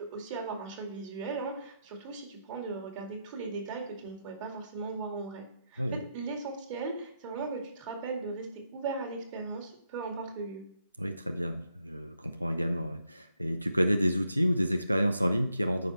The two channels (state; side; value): inverted; both; correlation -0.81